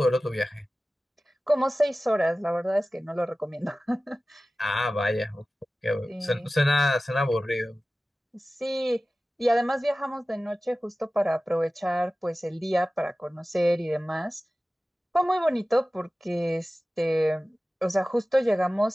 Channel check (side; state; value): both; normal; correlation 0.96